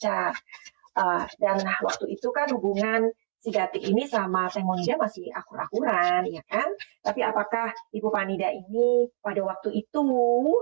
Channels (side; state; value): left; silent; 60 dB below the other